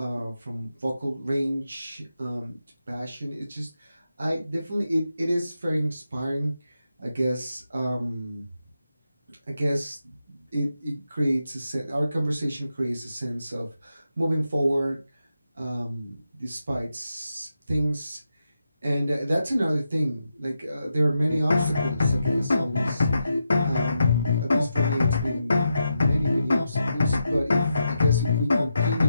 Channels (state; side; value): inverted; both; correlation -0.86